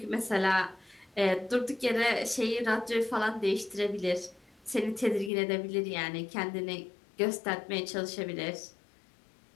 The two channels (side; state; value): right; drops out; at 5.3 s